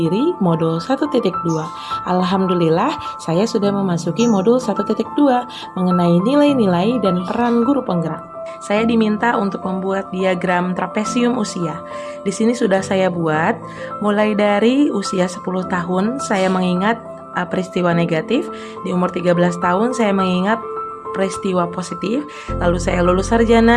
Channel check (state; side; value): identical; both; correlation 1.00